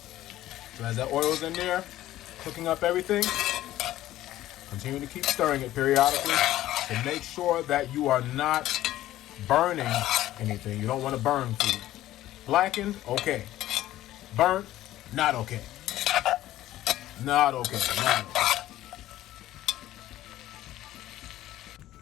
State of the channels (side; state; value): right; quieter; 14.4 dB